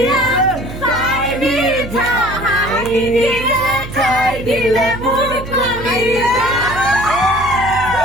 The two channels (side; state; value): right; noise; hum, 11 dB below the sound